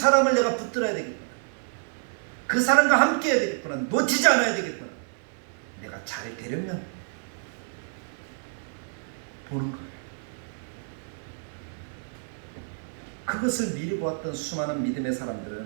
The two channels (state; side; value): silent; left; digital silence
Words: 내가 붙들어야 되겠구나. 그 사람과 함께해야 되겠구나. 놓치지 않아야 되겠구나. 내가 잘 되려면 보는 거예요. 그것을 미리 보았던 수많은 믿음의